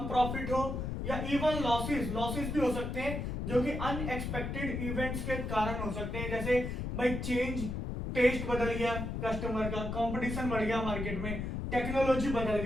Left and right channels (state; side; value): noise; left; rumble, 3 dB below the sound